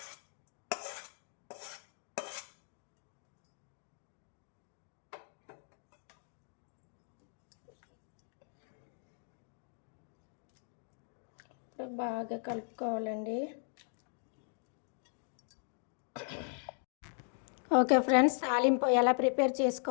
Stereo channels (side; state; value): right; silent; 52 dB below the other